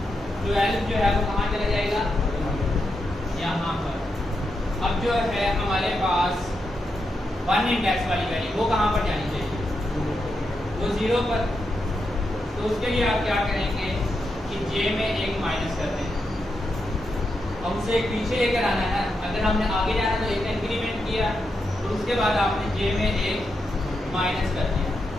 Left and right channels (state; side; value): normal; both; correlation 0.85